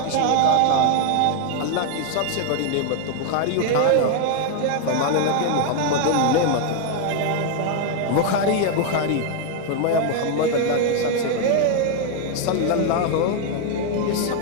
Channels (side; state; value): both; different; correlation 0.00